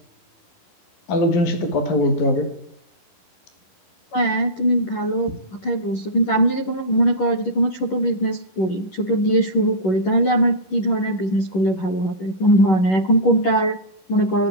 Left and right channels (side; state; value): right; late; 11 ms